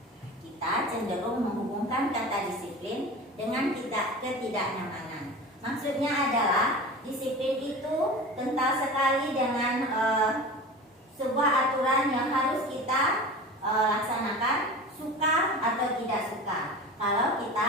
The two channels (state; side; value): normal; both; correlation 0.34